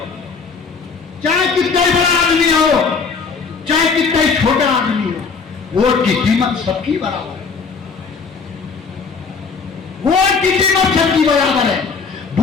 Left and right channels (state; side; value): quieter; right; 5.2 dB